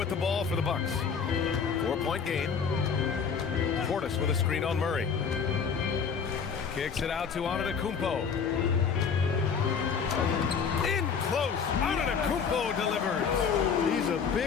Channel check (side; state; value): right; quieter; 6.3 dB